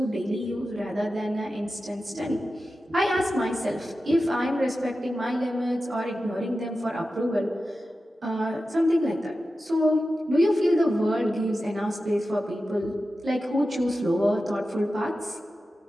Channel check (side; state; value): both; normal; correlation 0.92